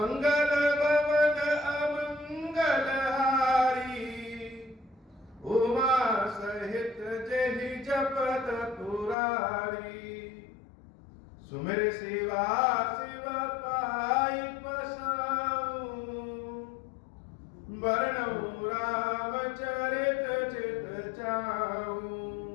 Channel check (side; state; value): right; drops out; at 9.2 s